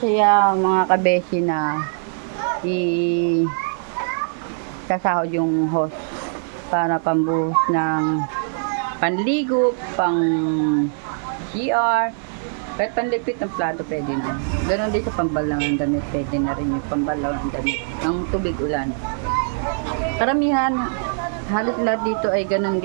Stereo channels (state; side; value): silent; left; digital silence